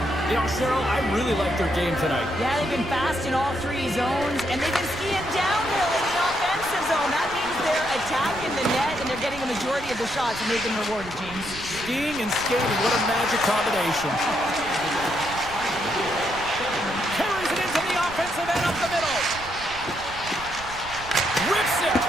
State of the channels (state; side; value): noise; right; rumble, 15 dB below the sound